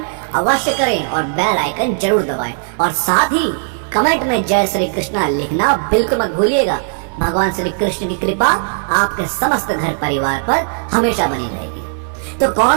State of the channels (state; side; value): silent; left; 68 dB below the other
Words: अवश्य करें और बेल आइकन जरूर दबाएं और साथ ही कमेंट में जय श्री कृष्णा लिखना बिल्कुल मत भूलिएगा। भगवान श्री कृष्ण की कृपा आपके समस्त घर परिवार पर हमेशा बनी रहेगी। तो